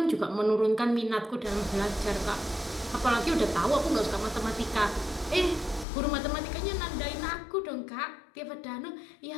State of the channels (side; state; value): right; drops out; at 5.9 s